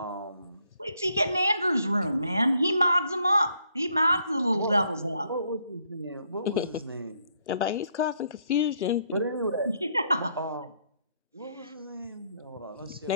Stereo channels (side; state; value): both; inverted; correlation -0.71